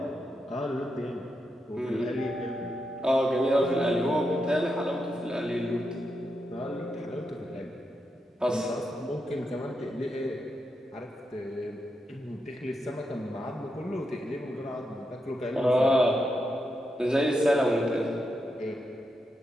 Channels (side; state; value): both; normal; correlation 0.85